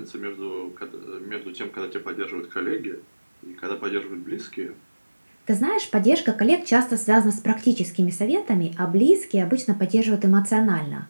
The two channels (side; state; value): both; inverted; correlation -1.00